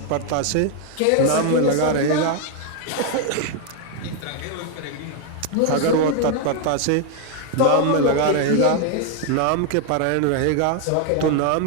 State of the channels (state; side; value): different; both; correlation 0.01